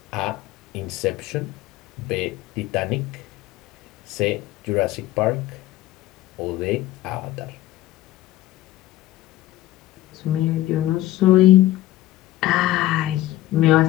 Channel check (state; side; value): quieter; right; 15.2 dB